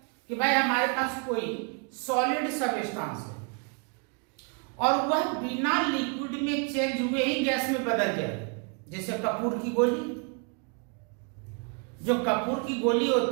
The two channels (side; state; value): left; quieter; 37.6 dB